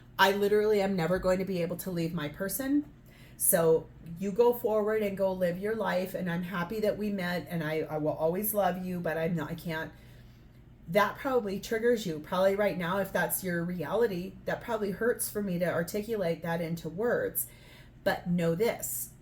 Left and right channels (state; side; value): identical; both; correlation 1.00